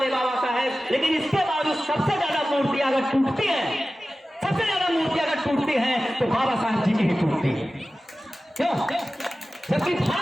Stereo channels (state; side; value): normal; both; correlation 0.95